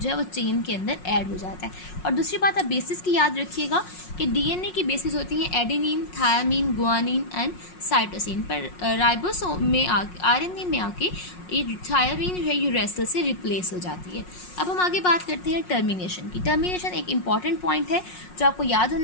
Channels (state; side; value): late; right; 5.5 ms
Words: जो है वो चेन के अंदर ऐड हो जाता है। और दूसरी बात आप बेसिस की याद रखिएगा कि DNA की बेसिस होती हैं adenine, thiamine, guanine and cytosine, पर राइबोसोम में RNA में आके ये थायामीन जो है यूरेसिल से रिप्लेस हो जाती है। अब हम आगे बात करते हैं टर्मिनेशन की। टर्मिनेशन एक इंपॉर्टेंट पॉइंट है जो आपको याद